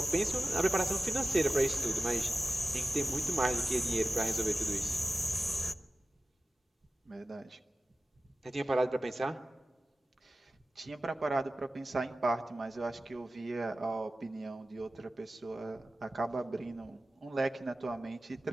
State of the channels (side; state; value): both; normal; correlation 0.96